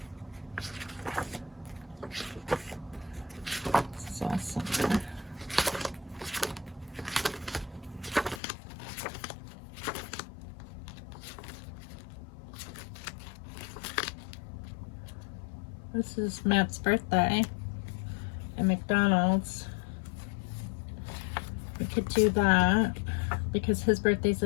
This is all summer. This is Matt's birthday at McDonald's. We could do that because his birthday's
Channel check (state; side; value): drops out; right; at 8.4 s